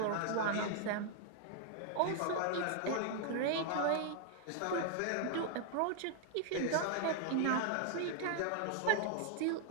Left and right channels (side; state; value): both; different; correlation 0.00